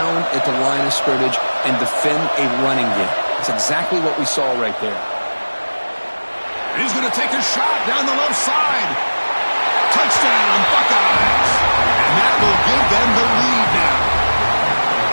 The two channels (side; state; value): both; inverted; correlation -1.00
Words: at the line of scrimmage and defend a running game. It's exactly what we saw right there. And he's going to take a shot down the left side. Touchdown, Buckeyes. And that will give them the lead now.